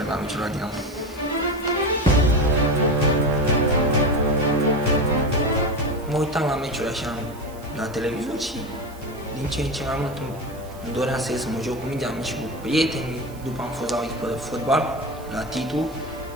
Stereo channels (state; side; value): noise; right; hiss, 23 dB below the sound